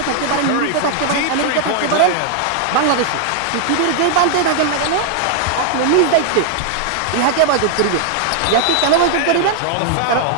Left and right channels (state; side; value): different; both; correlation 0.00